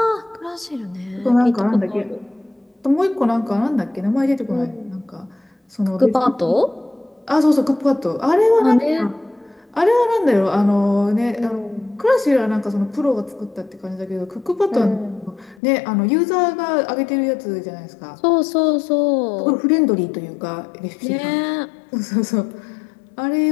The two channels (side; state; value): right; drops out; at 15.6 s